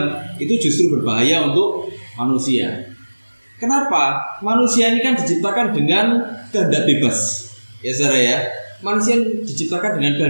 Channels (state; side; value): inverted; both; correlation -1.00